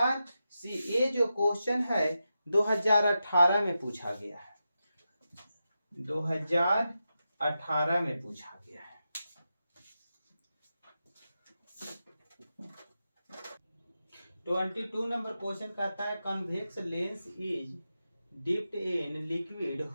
C. ये जो क्वेश्चन है 2018 में पूछा गया है, 2018 में पूछा गया है। 22 नंबर क्वेश्चन कहता है convex lens is dipped in liquid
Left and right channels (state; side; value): inverted; both; correlation -0.89